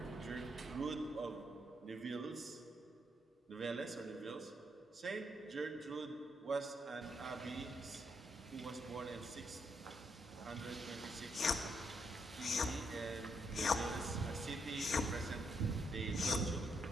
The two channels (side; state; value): both; normal; correlation 0.77